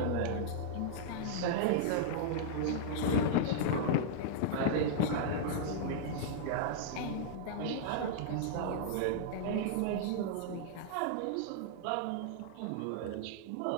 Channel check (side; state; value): both; different; correlation -0.02